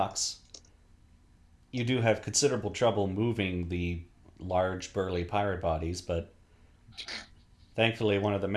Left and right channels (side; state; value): both; identical; correlation 1.00